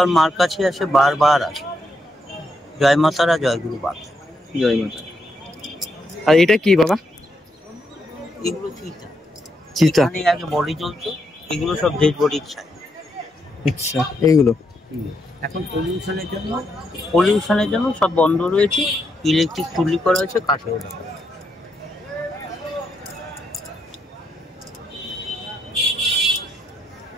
মার কাছে আসে বারবার আসে। জয় মাতারা, জয় গুরু বামদেব। জয় মাতা। আর এটা কি বাবা? এগুলো চিতা। চিতা। এখানে আগে বডি জ্বলতো, এগুলো সব ডেড বডির ছাই। আচ্ছা, এইগুলো এখন পলিউশনের জন্য সব বন্ধ রয়েছে। ইলেকট্রিক চুল্লি করা হয়েছে, কাঠে ওঠা।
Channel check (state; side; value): normal; both; correlation 0.80